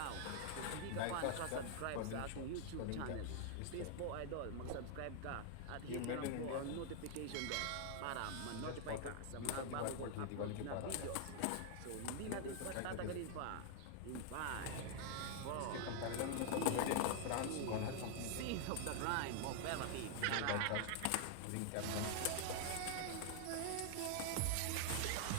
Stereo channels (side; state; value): both; different; correlation 0.00